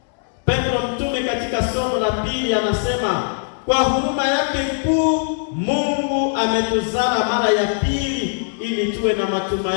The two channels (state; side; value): silent; right; 65 dB below the other